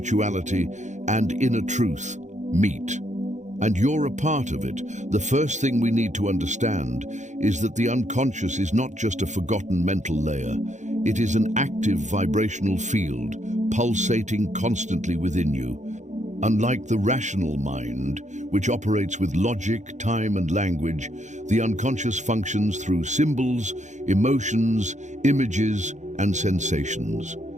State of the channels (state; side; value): late; left; 0.35 ms